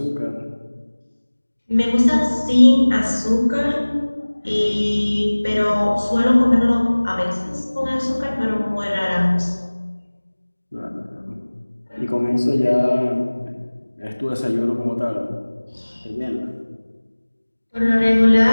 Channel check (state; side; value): inverted; both; correlation -1.00